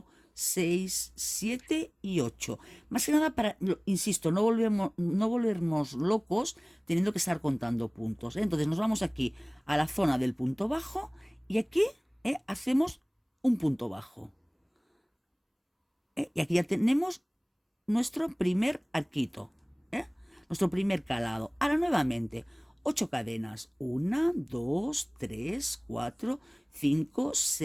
6, 7 y 8. Más que nada para, insisto, no volvernos locos teniendo que estar contando puntos. Entonces nos vamos aquí a la zona del punto bajo y aquí hacemos un punto bajo. Y aquí ya tenemos nuestro primer arquito, nuestro primer calado. Ahora nuevamente, 8 cadenas. 1, 2, 3, 4, 5,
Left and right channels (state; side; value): identical; both; correlation 1.00